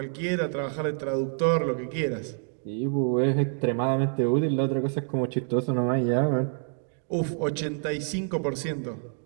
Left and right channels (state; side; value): silent; left; 58 dB below the other